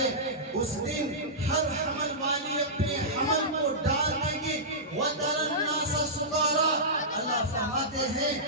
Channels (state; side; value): normal; both; correlation -0.15